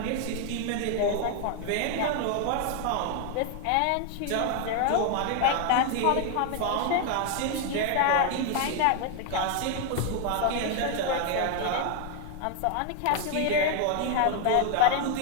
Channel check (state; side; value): different; both; correlation 0.01